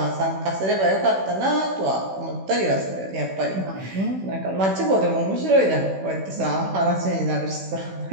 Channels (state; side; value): late; left; 16 ms